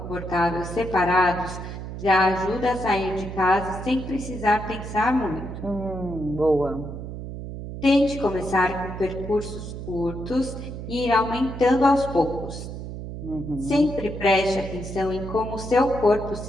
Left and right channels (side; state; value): right; noise; hum, 8 dB below the sound